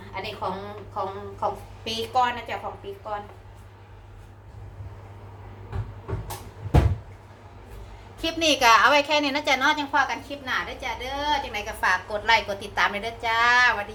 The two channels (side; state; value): both; identical; correlation 1.00